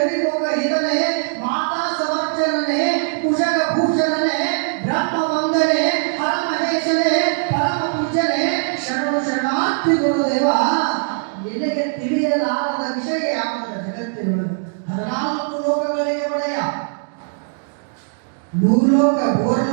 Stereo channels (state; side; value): silent; left; digital silence